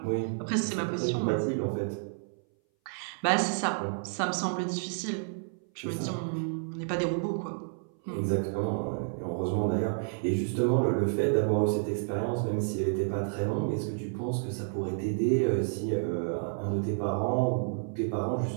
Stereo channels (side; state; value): left; silent; 58 dB below the other